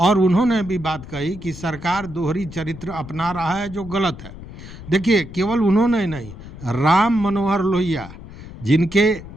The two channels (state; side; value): noise; left; rumble, 14 dB below the sound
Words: उन्होंने भी बात कही कि सरकार दोहरी चरित्र अपना रहा है जो गलत है। देखिए, केवल उन्होंने नहीं, राम मनोहर लोहिया, जिनके